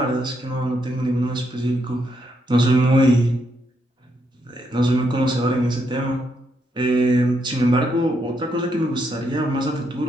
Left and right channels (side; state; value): both; normal; correlation 0.78